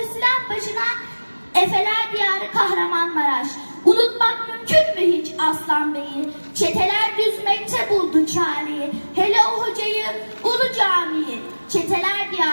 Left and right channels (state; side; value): inverted; both; correlation -1.00